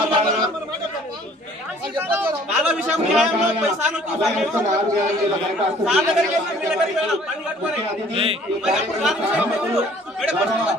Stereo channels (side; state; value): both; normal; correlation 0.55